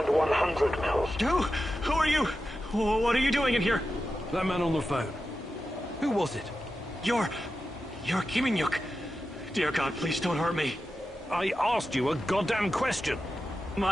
100 mils. Who are you? What are you doing in here? That man on the phone. Who was it? You're Kiminyuk. Dear God, please don't hurt me. I asked you a goddamn question.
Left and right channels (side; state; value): both; normal; correlation 0.91